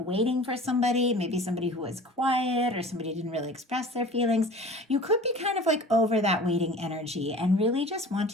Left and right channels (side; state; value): both; normal; correlation 0.42